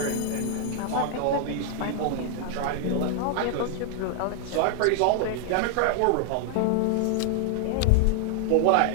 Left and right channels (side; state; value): both; different; correlation 0.00